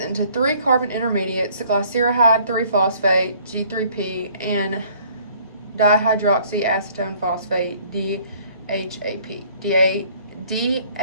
3 carbon intermediates, glyceride 3-phosphate, G3P, and dihydroxyacetone phosphate, DHAP.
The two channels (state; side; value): inverted; both; correlation -0.58